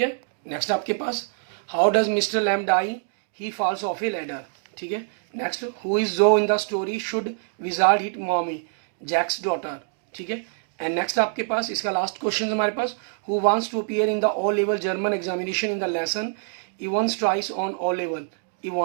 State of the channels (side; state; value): left; silent; digital silence